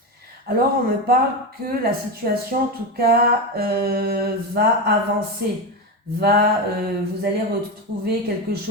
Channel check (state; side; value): normal; both; correlation 0.16